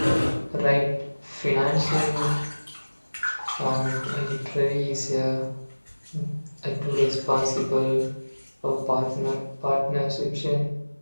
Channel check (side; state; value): both; inverted; correlation -1.00